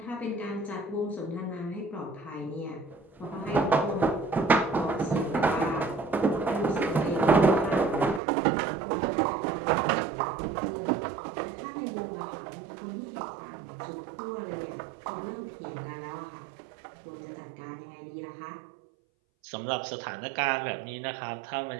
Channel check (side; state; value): left; drops out; at 8.2 s